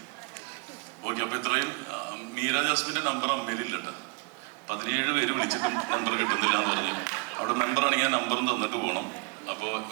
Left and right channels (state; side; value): quieter; left; 31.9 dB